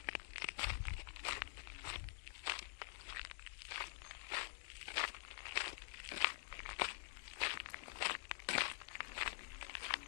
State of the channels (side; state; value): right; silent; digital silence